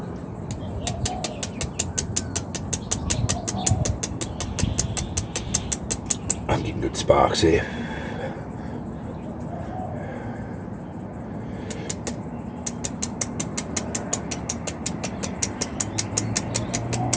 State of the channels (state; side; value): identical; both; correlation 1.00